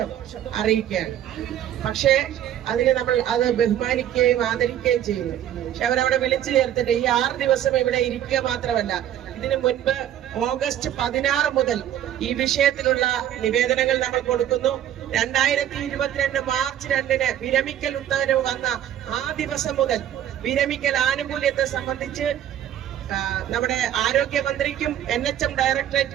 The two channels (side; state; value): left; quieter; 11.2 dB